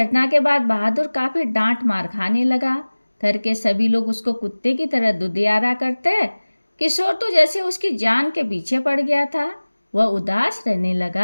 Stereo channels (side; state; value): both; inverted; correlation -1.00